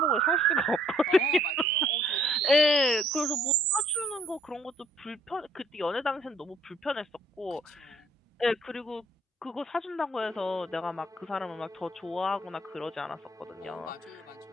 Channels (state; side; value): normal; both; correlation 0.62